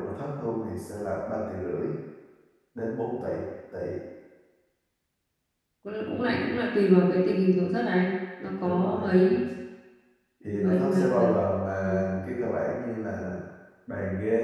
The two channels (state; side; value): identical; both; correlation 1.00